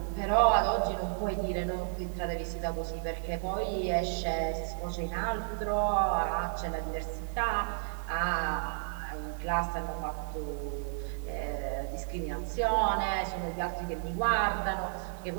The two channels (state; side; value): silent; left; digital silence